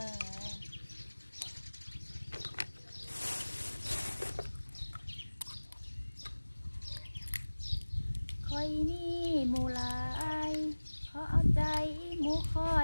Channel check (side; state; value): both; inverted; correlation -1.00